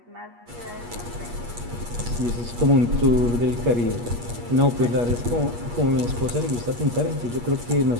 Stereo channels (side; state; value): left; late; 8.4 ms